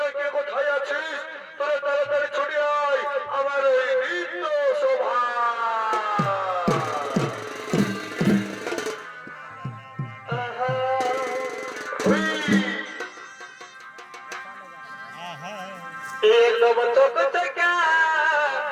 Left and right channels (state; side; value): identical; both; correlation 1.00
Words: কে কোথায় আছিস? তোরা তাড়াতাড়ি ছুটে আয় আমার এই নৃত্য শোভা। एकदम चौक चका